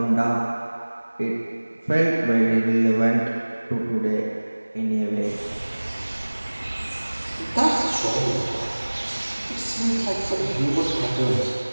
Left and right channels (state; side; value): inverted; both; correlation -1.00